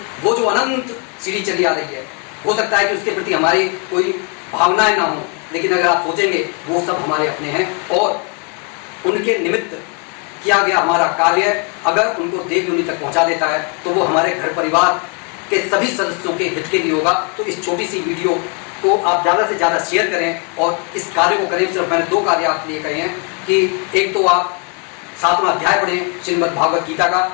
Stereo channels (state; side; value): quieter; right; 36.7 dB